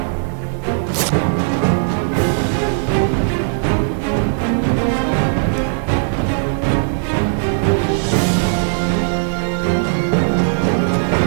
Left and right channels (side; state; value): left; silent; digital silence